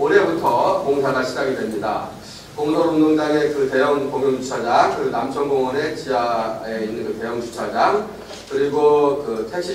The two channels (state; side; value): identical; both; correlation 1.00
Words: 공사가 시작이 됩니다. 공설운동장의 그 대형 공용주차장, 그 남천공원의 지하에 있는 그 대형 주차장, 그리고 그 택시